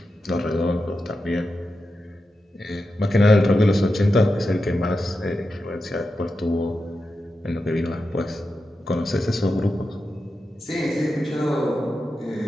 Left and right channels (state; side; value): normal; both; correlation 0.90